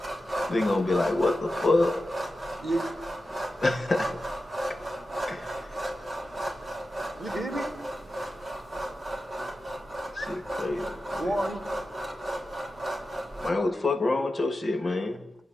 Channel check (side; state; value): both; normal; correlation 0.92